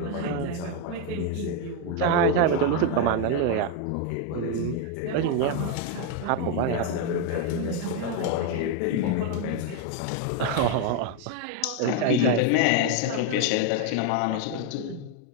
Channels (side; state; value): both; different; correlation 0.01